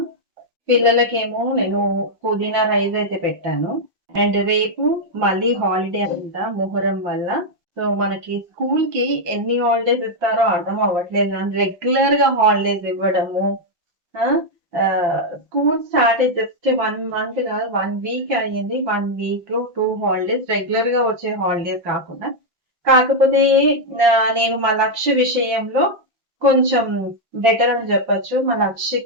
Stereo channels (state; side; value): late; left; 5.8 ms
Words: పిల్లలకేమో నేను పుదీనా రైస్ అయితే పెట్టాను. అండ్ రేపు మళ్ళీ హాలిడే అంట మొహర్రం వల్ల. సో, మనకి స్కూల్‌కి ఎన్ని హాలిడేస్ ఇస్తారో అర్థం అవ్వట్లేదు గానీ రెగ్యులర్‌గా హాలిడేస్ ఇవ్వడము. ఆ! స్కూల్ స్టార్ట్ అయ్యి జస్ట్ 1 మంత్ కాదు 1 వీక్ అయ్యింది. 1 వీక్‌లో 2 హాలిడేస్ రెగ్యులర్‌గా వచ్చే హాలిడేస్ కాకుండా. కాకపోతే నేను మా లక్ష్య విషయంలో కొంచెం బెటర్ అని చెప్పొచ్చు. మా